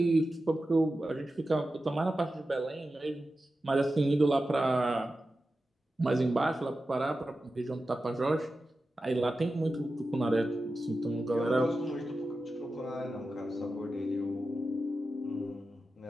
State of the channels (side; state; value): both; normal; correlation 0.92